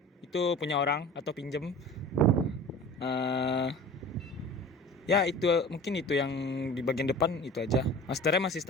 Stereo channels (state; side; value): normal; both; correlation 0.40